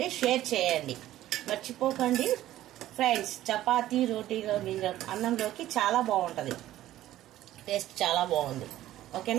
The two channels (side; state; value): left; quieter; 14.0 dB